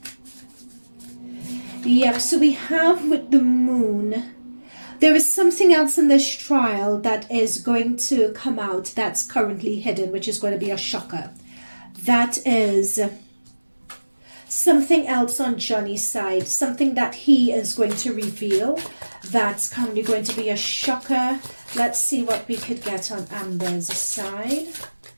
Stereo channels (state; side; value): inverted; both; correlation -1.00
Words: Yep, so we have with the moon, there is something else in this trial that is going to come out that's currently hidden, which is going to be a shocker. That is something else on Johnny's side, something that he is going to reveal that's currently going to be a shocker. Let's see what we could get on Amber's side.